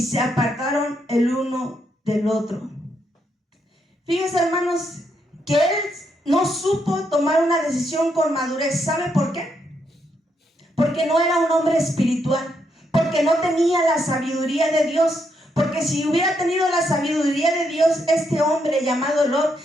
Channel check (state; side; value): normal; both; correlation 0.78